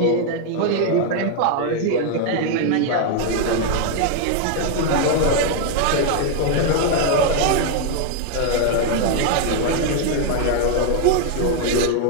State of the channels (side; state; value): both; different; correlation 0.00